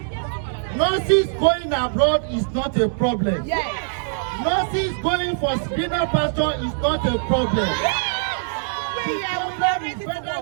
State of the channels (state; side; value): silent; left; digital silence